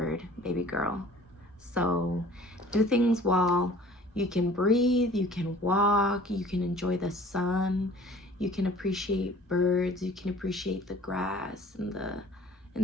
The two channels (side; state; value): both; normal; correlation 0.49